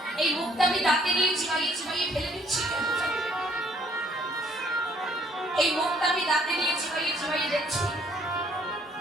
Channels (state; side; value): normal; both; correlation 0.63